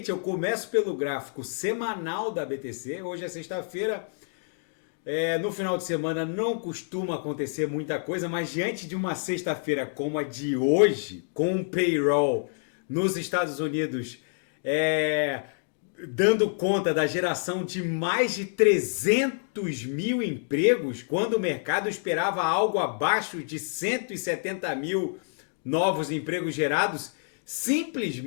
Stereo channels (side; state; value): right; silent; digital silence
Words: eu começo pelo gráfico semanal da BTC. Hoje é sexta-feira. No final de semana não costuma acontecer muita coisa, mas diante de uma sexta-feira como a de hoje, com um payroll nos Estados Unidos, dando conta da geração de mais de 300 mil empregos, quando o mercado esperava algo abaixo de 170 mil novos empregos gerados,